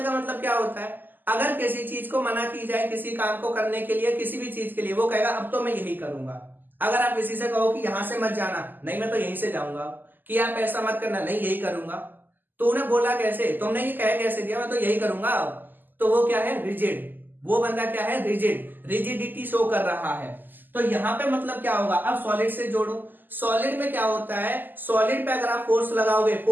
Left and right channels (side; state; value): left; late; 0.089 ms